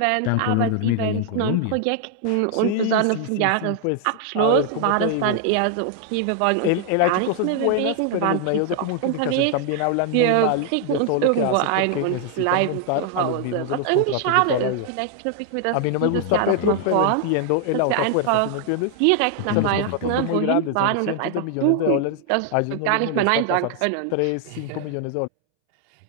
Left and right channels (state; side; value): different; both; correlation 0.00